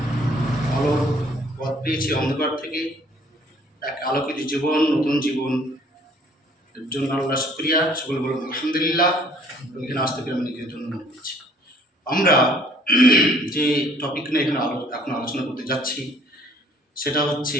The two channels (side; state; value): both; normal; correlation 0.58